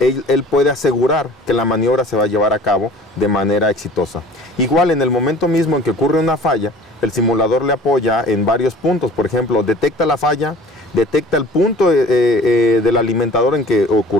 puede asegurar que la maniobra se va a llevar a cabo de manera exitosa. Igual, en el momento mismo en que ocurre una falla, el simulador le apoya en varios puntos. Por ejemplo, detecta la falla, detecta el punto del alimentador en que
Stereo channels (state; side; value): normal; both; correlation 0.46